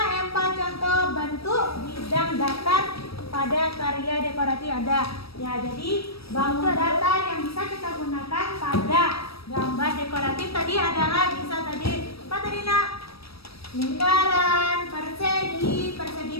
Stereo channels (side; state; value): right; late; 0.77 ms